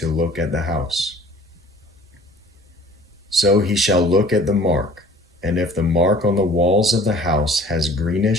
look at the house. So he shall look at the mark, and if the mark on the walls of the house has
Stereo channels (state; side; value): normal; both; correlation 0.50